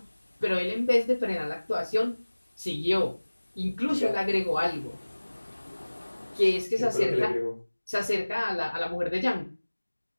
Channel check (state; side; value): inverted; both; correlation -1.00